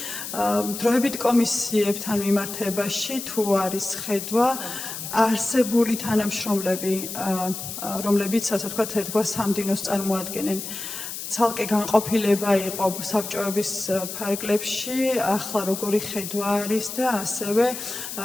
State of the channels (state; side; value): noise; left; hiss, 7 dB below the sound